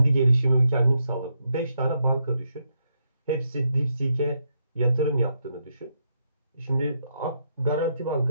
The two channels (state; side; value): inverted; both; correlation -0.80